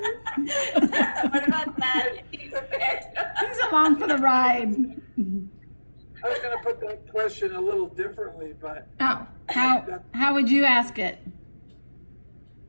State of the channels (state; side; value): inverted; both; correlation -1.00